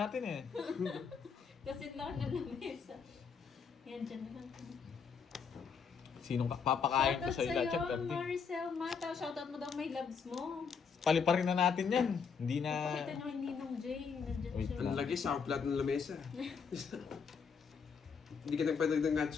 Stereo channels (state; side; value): quieter; right; 6.1 dB